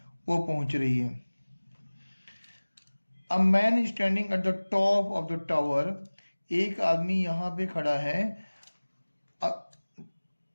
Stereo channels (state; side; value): inverted; both; correlation -1.00